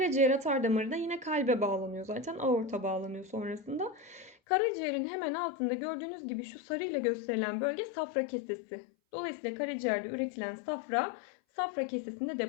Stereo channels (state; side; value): drops out; right; at 4.4 s